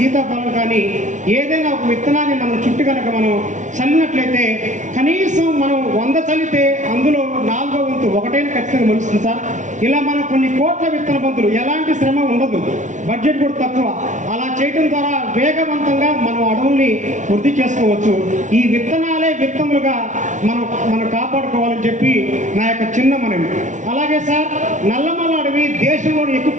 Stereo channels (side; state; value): left; late; 0.36 ms